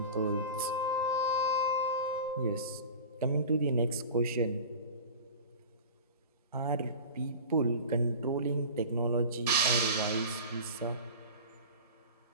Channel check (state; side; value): inverted; both; correlation -0.35